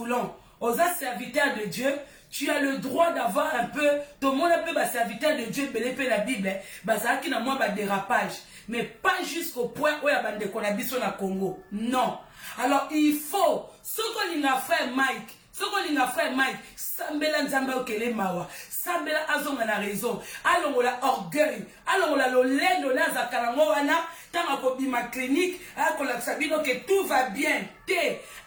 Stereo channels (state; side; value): identical; both; correlation 1.00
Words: aux serviteurs de Dieu, tu as le droit d'avoir un peu, tout le monde peut ba serviteur de Dieu, belé la Bible, ba ça qui na moi ba dérapage, mais pas jusqu'au point où ya bande ko na biso na Congo. Non. Alors il faut ce qu'on a fait Mike, ce qu'on a fait Mike, sambela nzamba okele mawa, sambela azonga na raison, allons la orgueil, allons la lolendo na zakalango wana, tanga ko bima clinique, akola sabino que tout va bien.